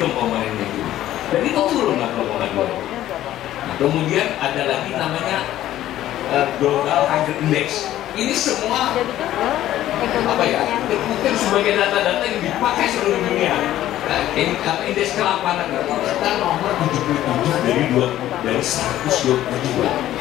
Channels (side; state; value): right; quieter; 13.3 dB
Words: komponennya itu. Dan itu turun 60,2. Nah, kemudian ada lagi namanya global hunger index. Ini semua apa ya, terkutip sebagai data-data yang dipakai seluruh dunia. Nah, indeks kelaparan kita nomor 77 dari 122.